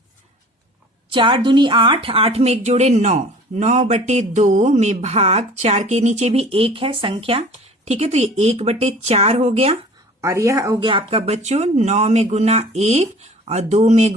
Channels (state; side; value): normal; both; correlation 0.46